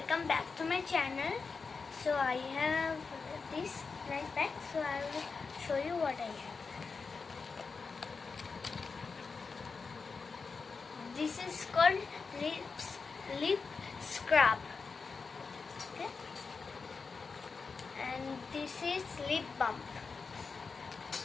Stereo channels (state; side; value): quieter; right; 4.8 dB